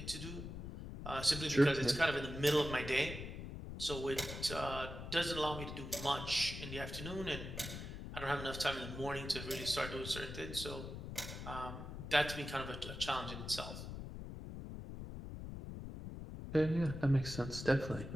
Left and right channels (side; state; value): left; noise; rumble, 8 dB below the sound